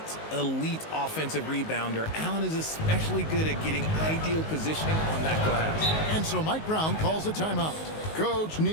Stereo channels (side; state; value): right; late; 19 ms